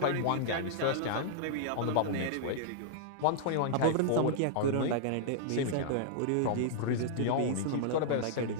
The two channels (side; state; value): both; different; correlation -0.02